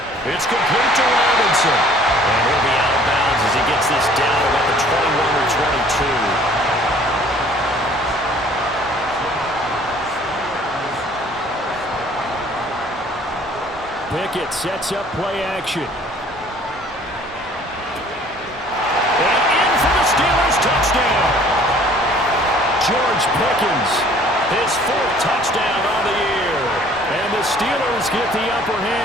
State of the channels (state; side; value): normal; both; correlation 0.54